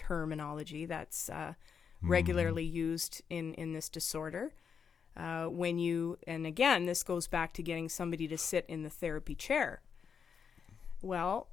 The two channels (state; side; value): quieter; right; 6.7 dB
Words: that's regularly used in this disorder. And again, this goes back to getting somebody to sit in the therapy chair. Well,